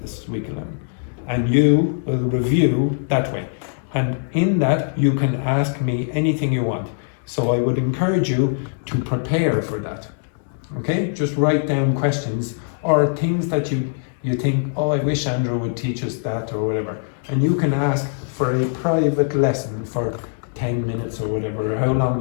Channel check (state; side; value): silent; right; digital silence